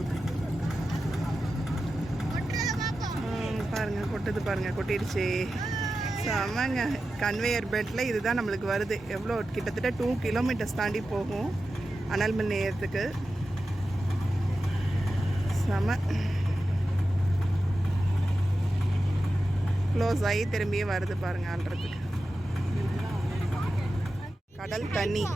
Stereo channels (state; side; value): normal; both; correlation 0.92